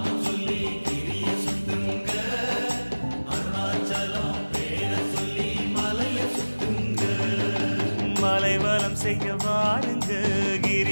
சொல்லி கிரிய சுத்துங்க, அருணாச்சலம் பேரை சொல்லி மலைய சுத்துங்க. மலைவலம் செய்ய வாருங்க,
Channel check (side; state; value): both; inverted; correlation -1.00